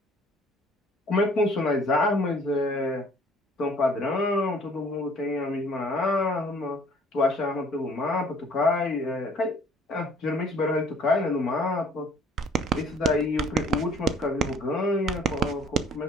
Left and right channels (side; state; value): both; normal; correlation 0.55